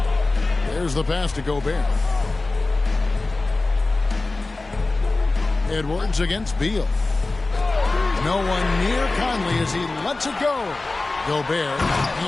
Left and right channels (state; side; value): quieter; right; 3.3 dB